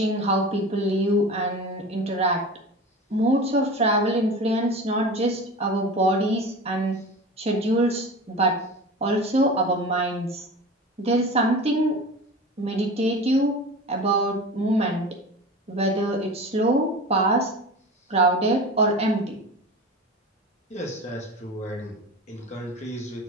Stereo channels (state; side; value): normal; both; correlation 0.32